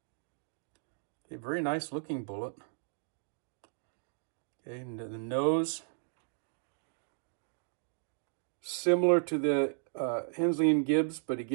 A very nice looking bullet. Okay, and the nose, similar to the Hensley Gibbs, but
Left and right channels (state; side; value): silent; left; digital silence